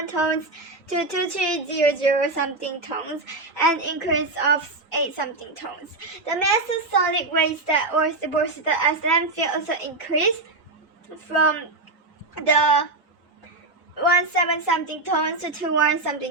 tons to 2300 something tons, an increase of 8 something tons. The mass of solid waste that was deposited as landfill also increased from the 17 something tons to 21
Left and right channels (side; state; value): left; quieter; 3.1 dB